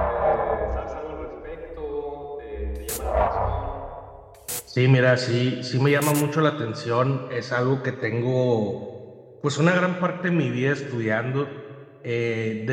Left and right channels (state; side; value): identical; both; correlation 1.00